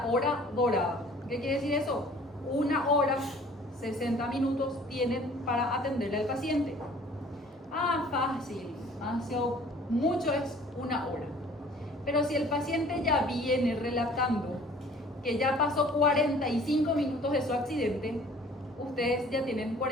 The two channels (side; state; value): both; normal; correlation 0.52